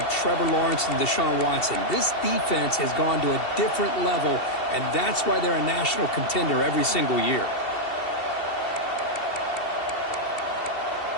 Trevor Lawrence and Deshaun Watson. This defense has gone to a different level, and that's why they're a national contender every single year.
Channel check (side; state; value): right; late; 2.7 ms